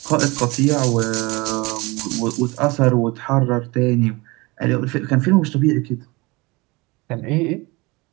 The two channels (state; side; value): quieter; left; 24.4 dB